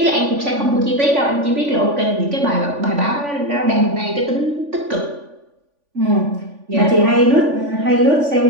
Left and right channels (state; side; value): late; left; 3.5 ms